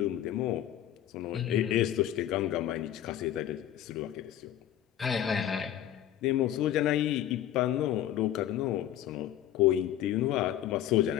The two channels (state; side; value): quieter; right; 11.7 dB